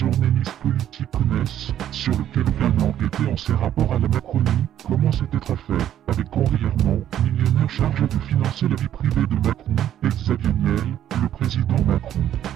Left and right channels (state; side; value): quieter; left; 11.1 dB